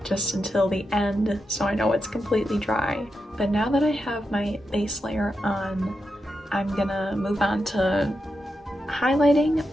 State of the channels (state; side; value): normal; both; correlation 0.87